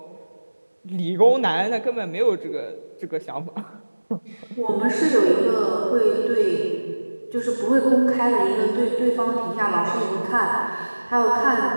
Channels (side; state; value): both; inverted; correlation -1.00